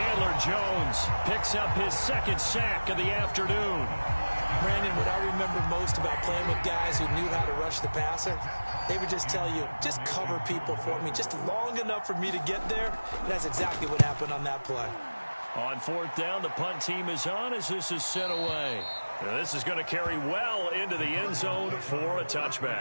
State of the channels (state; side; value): inverted; both; correlation -1.00